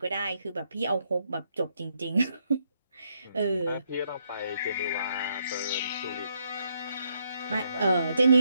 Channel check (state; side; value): inverted; both; correlation -0.76